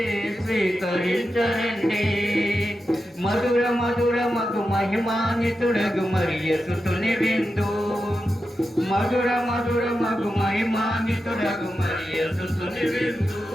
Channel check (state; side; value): normal; both; correlation 0.90